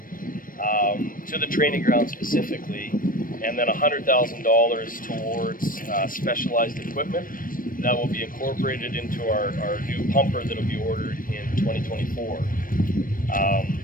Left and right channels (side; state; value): right; late; 0.40 ms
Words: to the training ground specifically, and then $100,000 towards specialized equipment that will be incorporated into our new pumper that will be ordered in 2024.